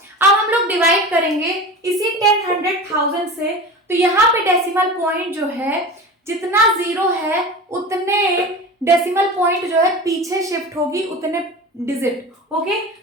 अब हम लोग डिवाइड करेंगे इसी 10, 100, 1000 से, तो यहाँ पे डेसिमल पॉइंट जो है जितना 0 है उतने डेसिमल पॉइंट जो है पीछे शिफ्ट होगी, उतने डिजिट। ओके,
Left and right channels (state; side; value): normal; both; correlation 0.32